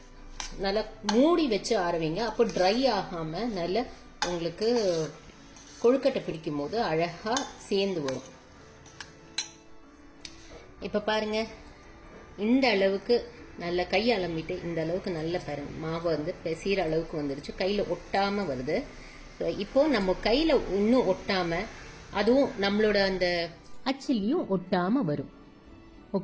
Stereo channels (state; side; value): identical; both; correlation 1.00